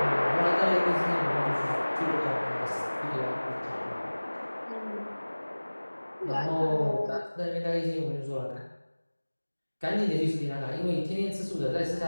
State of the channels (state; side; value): inverted; both; correlation -1.00